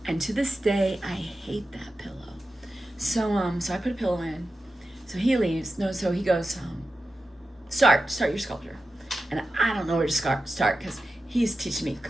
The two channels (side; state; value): both; normal; correlation 0.92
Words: and to this day I hate that pillow. So I put a pillow in. So he leaves. So he goes, start your sculpture. And I don't know where to start because he's teaching me